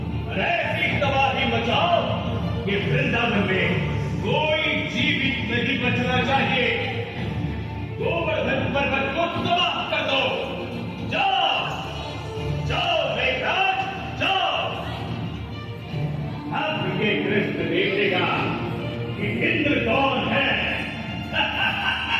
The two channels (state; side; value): identical; both; correlation 1.00